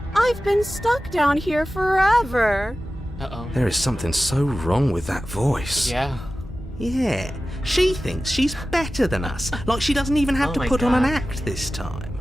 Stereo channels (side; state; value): both; normal; correlation 0.95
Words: I've been stuck down here forever. Uh-oh. There is something so wrong with that voice. Yeah. Yeah, she thinks she's better than us, like she doesn't even have Oh to my put on an God. act this time.